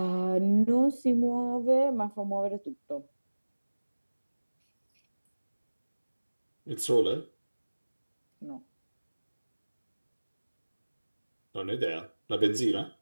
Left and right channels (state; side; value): inverted; both; correlation -1.00